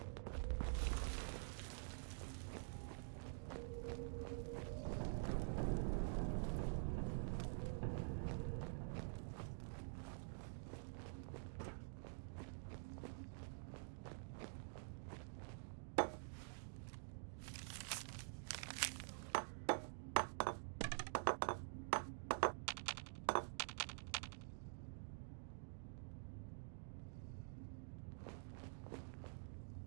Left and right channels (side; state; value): left; silent; digital silence